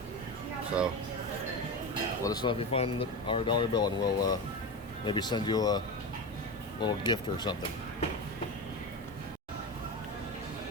so let us know if you find our dollar bill, and we'll maybe send you a little gift or something.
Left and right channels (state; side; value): normal; both; correlation 0.22